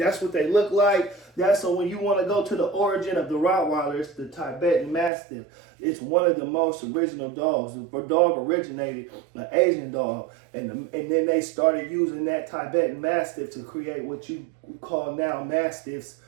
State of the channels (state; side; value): drops out; left; at 5.1 s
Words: what they look like. So when you want to go to the origin of the Rottweiler, it's the Tibetan Mastiff. It's one of the most original dogs. The dog originated an Asian dog, and then they started using that Tibetan Mastiff to create what you call now Mastiffs,